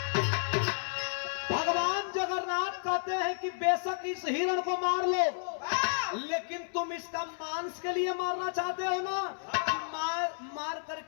भगवान जगन्नाथ कहते हैं कि बेशक इस हिरण को मार लो, लेकिन तुम इसका मांस के लिए मारना चाहते हो ना, कि मार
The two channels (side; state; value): right; silent; 57 dB below the other